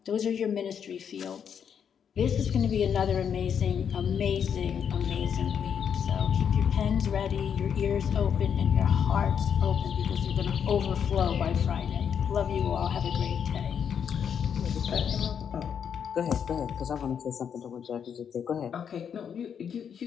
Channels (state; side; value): quieter; right; 7.7 dB